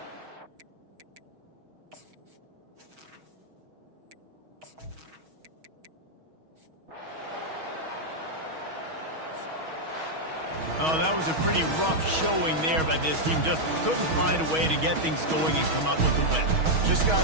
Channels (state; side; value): late; left; 6.3 ms